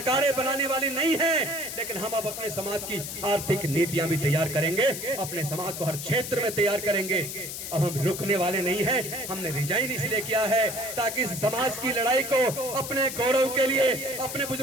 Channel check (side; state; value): left; noise; hiss, 7 dB below the sound